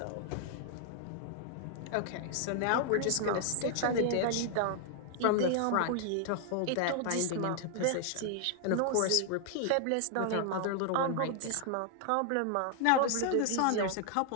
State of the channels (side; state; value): both; different; correlation 0.00